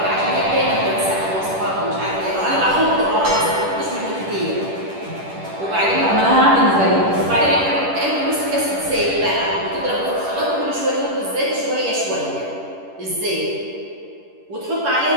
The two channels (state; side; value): late; left; 10 ms